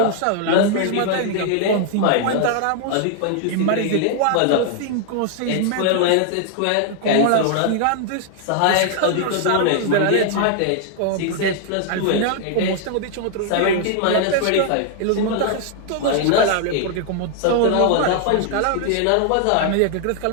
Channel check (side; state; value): both; different; correlation 0.00